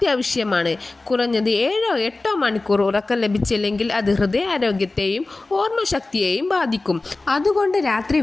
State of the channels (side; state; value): right; quieter; 3.3 dB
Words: കുറഞ്ഞത് 7-8 മണിക്കൂർ ഉറക്കം ലഭിച്ചില്ലെങ്കിൽ അത് ഹൃദയാരോഗ്യത്തെയും ഓർമ്മശക്തിയെയും ബാധിക്കും. അതുകൊണ്ട് രാത്രി